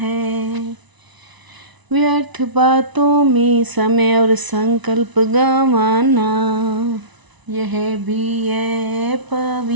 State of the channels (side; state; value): left; late; 1.0 ms